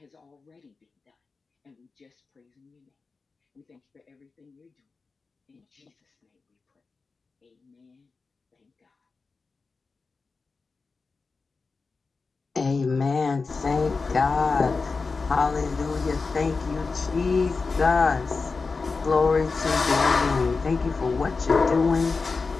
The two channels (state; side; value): quieter; right; 4.3 dB